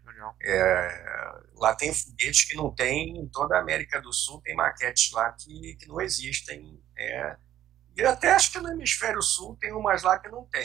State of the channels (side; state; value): left; quieter; 12.0 dB